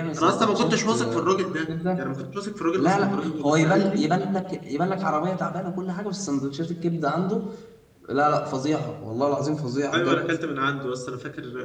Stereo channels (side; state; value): both; identical; correlation 1.00